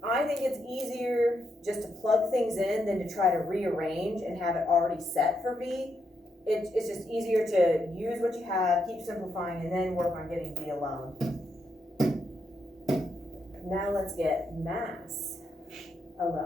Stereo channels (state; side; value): normal; both; correlation 0.80